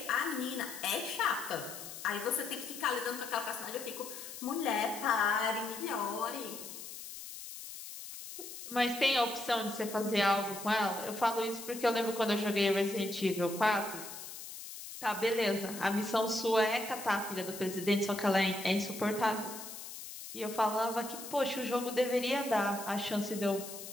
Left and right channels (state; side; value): noise; left; hiss, 11 dB below the sound